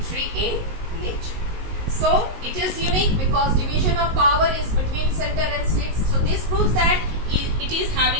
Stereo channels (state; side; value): late; left; 19 ms